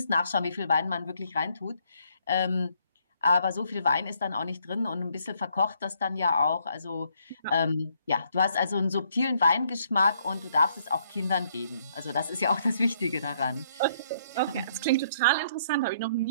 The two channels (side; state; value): both; inverted; correlation -0.69